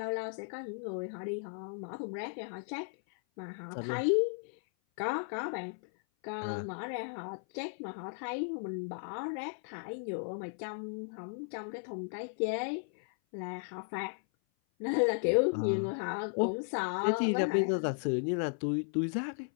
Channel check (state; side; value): silent; right; 54 dB below the other